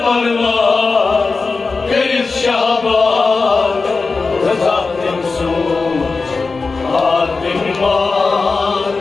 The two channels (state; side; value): quieter; right; 4.2 dB